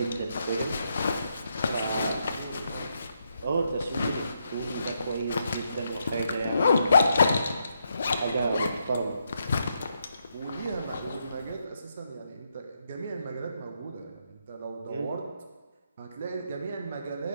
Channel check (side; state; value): both; inverted; correlation -0.80